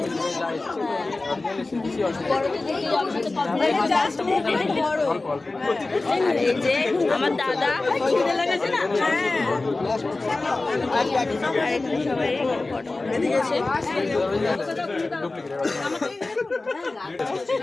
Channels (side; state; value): right; quieter; 3.3 dB